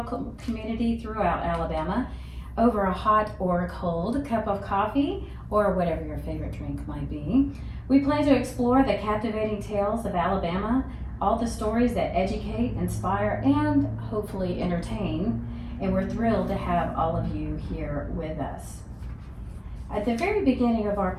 community throughout Alabama over a hot or cold cup of coffee or whatever your favorite drink might be. We plan to explore the captivating tales of Alabama, all the stories that educate, inspire, and hopefully entertain. And we're thrilled to have all of you here with us. At the very beginning of our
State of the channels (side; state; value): both; identical; correlation 1.00